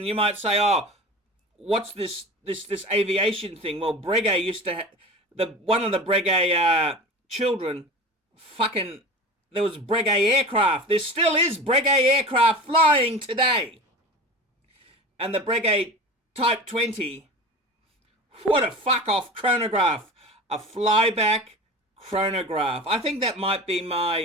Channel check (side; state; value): both; normal; correlation 0.33